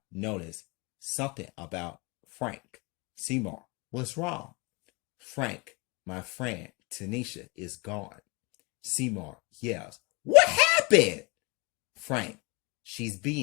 noticed something about Frank. Seymour, what's wrong? Frank, my friend Tanisha is gone. Seymour yells, what happened? Frank, she's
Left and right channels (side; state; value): right; quieter; 28.0 dB